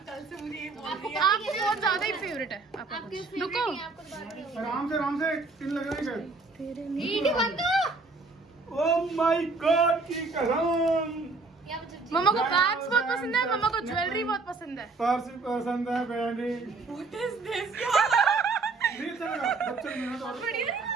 कल से मुझे ये बोल आपको बहुत ज्यादा ही फेवरेट है आपका। रुको आराम से पिन लग रही है। ईडी बंद करो। ओह माय गॉड की कसम। मम्मा को बैग्स बहुत पसंद है, मम्मा को ज्वेलरी बहुत पसंद है। पर्स पसंद है, बैंडी What is this? नहीं चलेगा, बच्चे मेहनत और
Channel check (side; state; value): left; quieter; 3.9 dB